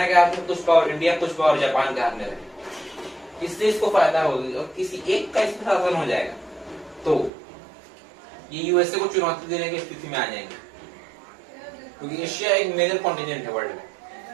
के हाथ में, कुछ पावर इंडिया, कुछ पावर जापान के हाथ में रहे। इससे इसको फायदा होगी और किसी एक का इस पर शासन हो जाएगा तो ये यूएसए को चुनौती देने की स्थिति में आ जाएंगे, क्योंकि एशिया एक मेजर कॉन्टिनेंट है वर्ल्ड में।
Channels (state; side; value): drops out; left; at 7.3 s